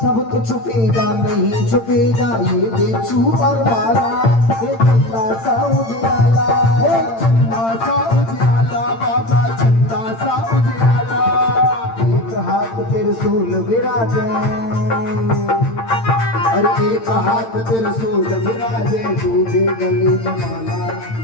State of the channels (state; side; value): late; right; 8.8 ms